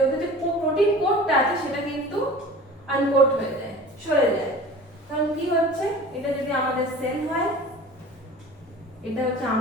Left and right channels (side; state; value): both; normal; correlation 0.40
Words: কোডটা আছে, সেটা কিন্তু আনকোড হয়ে যায়, সরে যায়। কারণ কি হচ্ছে, এটা যদি আমাদের সেল হয়, এটা হচ্ছে